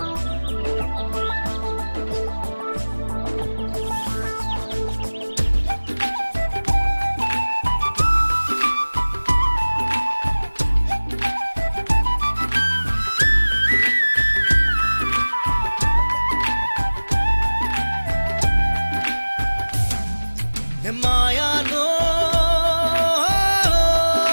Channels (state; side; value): inverted; both; correlation -1.00